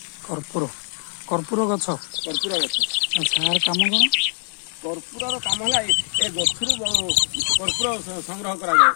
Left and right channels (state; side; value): silent; right; 64 dB below the other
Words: କର୍ପୂର। କର୍ପୂର ଗଛ। କର୍ପୂର ଗଛ। ଆଚ୍ଛା, ଆର କାମ କ'ଣ? କର୍ପୂରର କାମ ହେଲା ଏ ଗଛରୁ କର୍ପୂର ସଂଗ୍ରହ କରାଯାଏ